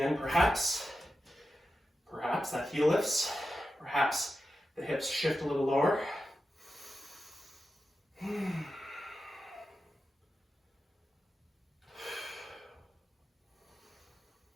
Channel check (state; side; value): normal; both; correlation 0.90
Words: perhaps that heel lifts, perhaps the hips shift a little lower.